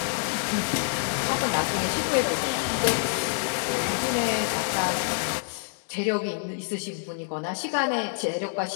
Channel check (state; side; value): silent; right; digital silence